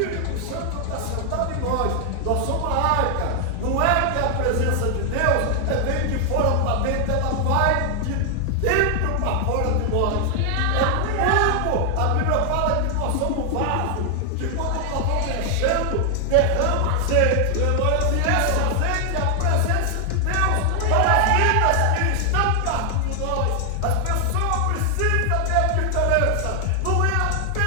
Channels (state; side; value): different; both; correlation 0.00